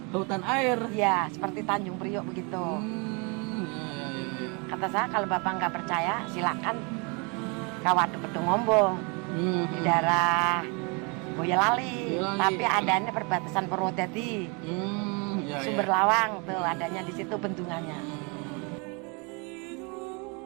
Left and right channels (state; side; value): quieter; left; 32.0 dB